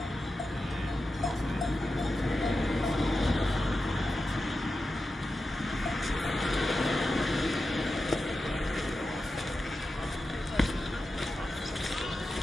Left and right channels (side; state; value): both; normal; correlation 0.91